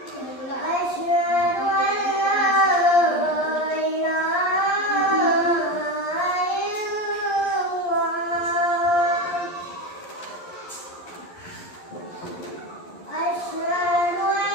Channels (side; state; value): right; late; 11 ms